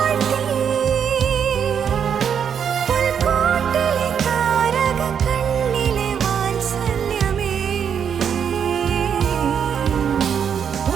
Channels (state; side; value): quieter; left; 7.7 dB